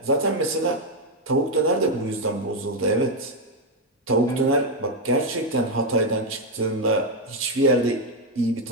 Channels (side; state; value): both; normal; correlation 0.04